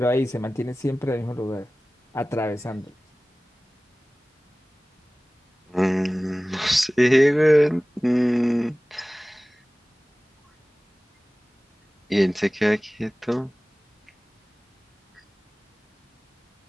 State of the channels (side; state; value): both; normal; correlation 0.98